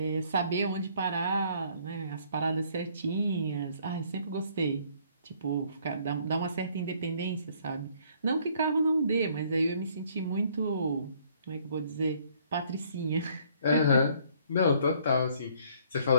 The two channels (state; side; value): inverted; both; correlation -0.62